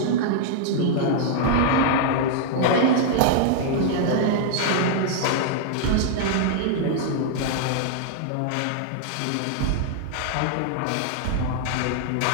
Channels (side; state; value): both; different; correlation -0.01